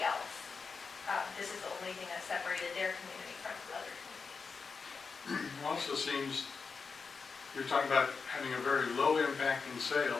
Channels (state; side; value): quieter; right; 5.0 dB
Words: else. This is the only thing that separated their community from other communities. It also seems you're talking about having a very low impact in